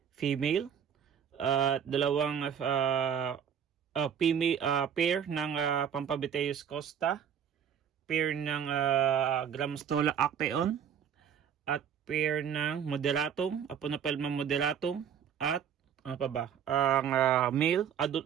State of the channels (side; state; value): left; quieter; 8.2 dB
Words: Female. Dalawang pair ng Pampabiteus Costa. Pair ng Gramstola actaeon. At pair ng Moderatum. Aponapelma moderatum. At ano pa ba? Ang